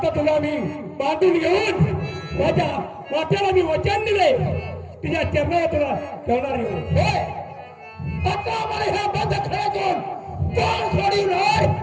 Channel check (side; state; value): both; identical; correlation 1.00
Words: तुला मी बांधून घेऊन माझ्या वाट्याला मी वचन दिले तुझ्या चरणावर तुला ठेवणार आहे. आता मला ह्या बंद खेळातून कोण सोडून राय